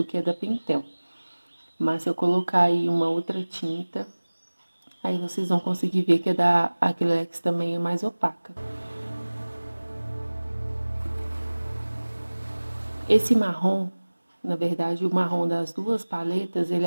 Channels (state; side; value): inverted; both; correlation -1.00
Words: que a da Pentel. Mas se eu colocar aí uma outra tinta, aí vocês vão conseguir ver que a da Acrylex também é mais opaca. Esse marrom, na verdade, o marrom das duas paletas, ele